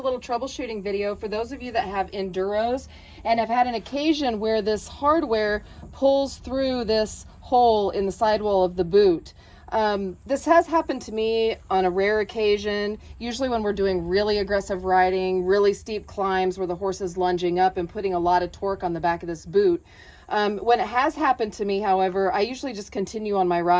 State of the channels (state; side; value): identical; both; correlation 1.00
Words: little troubleshooting video for those of you that have enduros and have had an occasion where this hardware pulls through this hole in the sidewall of the boot. This has happened to me on a rare occasion, usually when we're doing really aggressive riding, really steep climbs where the horse is lunging up and putting a lot of torque on the back of this boot. When it has happened to me, however, I usually just continue on my